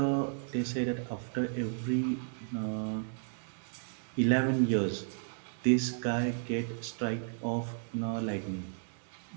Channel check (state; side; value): silent; left; digital silence